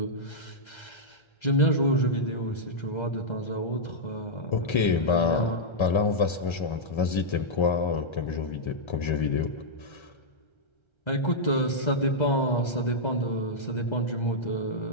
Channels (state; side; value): late; right; 1.3 ms